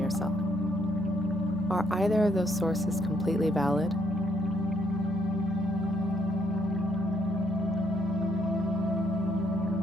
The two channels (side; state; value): both; normal; correlation 0.71